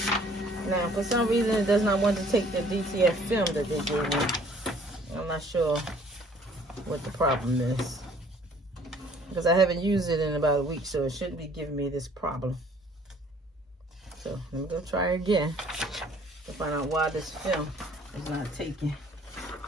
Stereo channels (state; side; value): normal; both; correlation 0.57